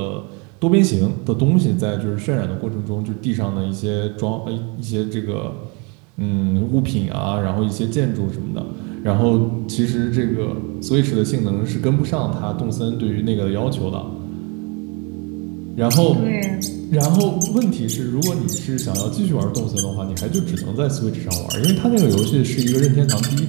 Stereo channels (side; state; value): left; quieter; 31.6 dB